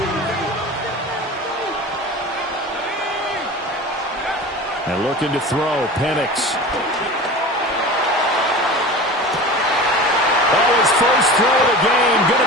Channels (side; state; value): both; normal; correlation 0.34